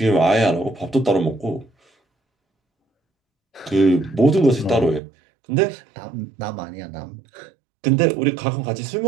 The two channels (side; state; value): left; drops out; at 5.0 s